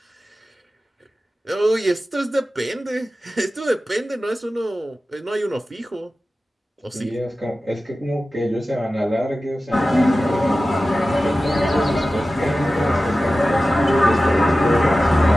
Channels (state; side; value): normal; both; correlation 0.95